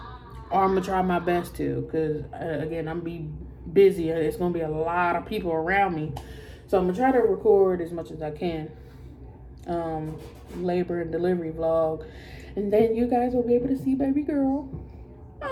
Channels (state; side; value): identical; both; correlation 1.00